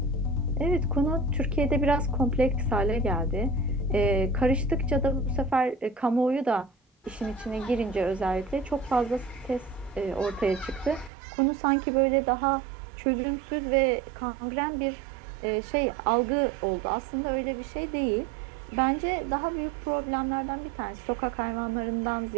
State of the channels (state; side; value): drops out; left; at 11.1 s